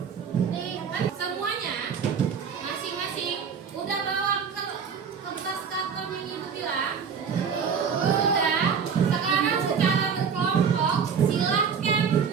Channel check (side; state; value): left; quieter; 6.5 dB